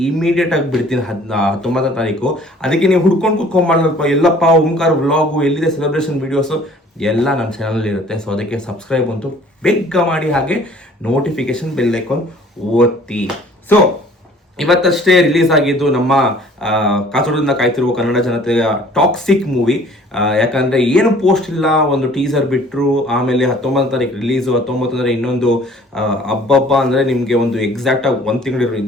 ಇಮಿಡಿಯೇಟಾಗಿ ಬಿಡ್ತೀನಿ 19ನೇ ತಾರೀಕು. ಅದಕ್ಕೆ ನೀವು ಹುಡ್ಕೊಂಡು ಕುತ್ಕೊಂಡ್ಬಾರ್ದಲ್ಪ, ಎಲ್ಲಪ್ಪ ಓಂಕಾರ ವ್ಲಾಗು ಎಲ್ಲಿದೆ ಸೆಲೆಬ್ರೇಷನ್ ವೀಡಿಯೋಸು ಎಲ್ಲ ನನ್ನ ಚಾನಲ್ ಇರುತ್ತೆ. ಸೊ ಅದಕ್ಕೆ ಸಬ್ಸ್ಕ್ರೈಬ್ ಅಂತೂ ಬೇಗ ಮಾಡಿ, ಹಾಗೆ ನೋಟಿಫಿಕೇಶನ್ ಬೆಲ್ ಐಕಾನ್ ಒತ್ತಿ. ಸೊ ಇವತ್ತಷ್ಟೇ ರಿಲೀಸ್ ಆಗಿದ್ದು ನಮ್ಮ ಕಾತುರದಿಂದ ಕಾಯ್ತಿರುವ ಕನ್ನಡ ಜನತೆಯ ಟಾಕ್ಸಿಕ್ ಮೂವಿ. ಯಾಕಂದರೆ ಏನು ಪೋಸ್ಟ್ ಇಲ್ಲ, ಒಂದು ಟೀಸರ್ ಬಿಟ್ಟರು, ಆಮೇಲೆ 19ನೇ ತಾರೀಕು ರಿಲೀಸು. 19 ಅಂದರೆ ಇನ್ನೊಂದು ಹಬ್ಬ ಅಂದರೆ ನಿಮಗೆ ಒಂದು ಎಕ್ಸಾಕ್ಟಾಗಿ 1 ತಿಂಗಳು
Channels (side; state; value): both; normal; correlation 0.53